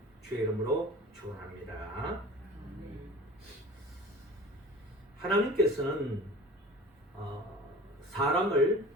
주의 이름으로 축원합니다. 하나님께서는 사람을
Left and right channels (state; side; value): normal; both; correlation 0.40